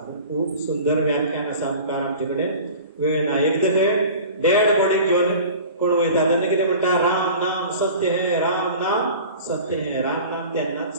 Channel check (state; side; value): inverted; both; correlation -0.40